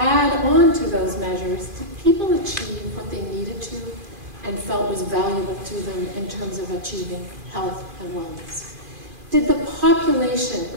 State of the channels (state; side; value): late; left; 2.5 ms